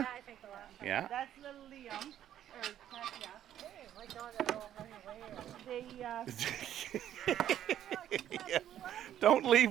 Yeah, I think the last time. Yeah. That's little Liam. Or Katya. Hey, my dog is all running away. They Don't leave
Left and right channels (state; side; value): quieter; left; 11.2 dB